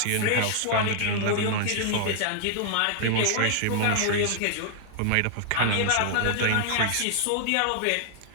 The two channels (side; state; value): both; different; correlation 0.00